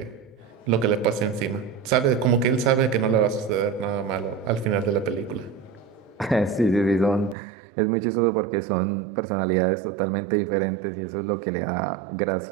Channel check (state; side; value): drops out; left; at 7.4 s